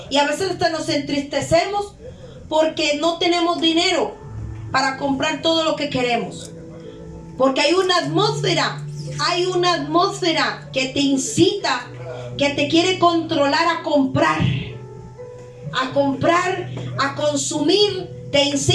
Y a veces hasta nos entristecemos porque no tenemos dinero para comprar todo lo que queremos. Porque hay una atmósfera que te incita, que te quiere controlar a comprar, a consumir, te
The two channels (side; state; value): both; identical; correlation 1.00